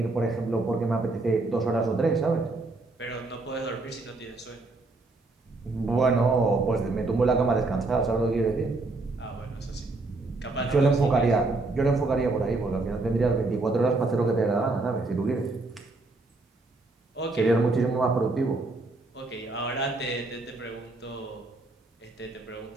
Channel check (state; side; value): quieter; left; 3.2 dB